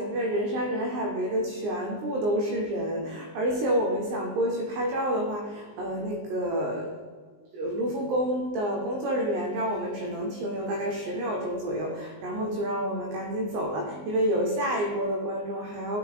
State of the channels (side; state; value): left; late; 19 ms